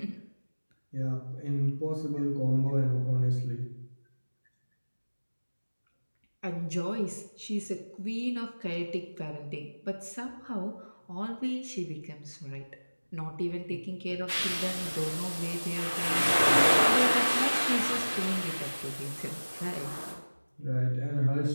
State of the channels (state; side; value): inverted; both; correlation -1.00